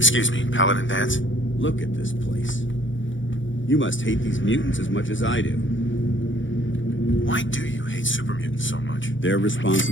me, Paladin Dance? Look at this place. You must hate these mutants as much as I do. Why do you hate super mutants so much? They're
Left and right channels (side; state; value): right; late; 0.56 ms